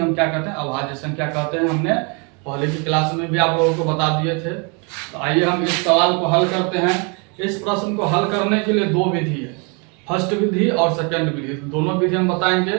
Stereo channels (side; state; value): left; quieter; 33.6 dB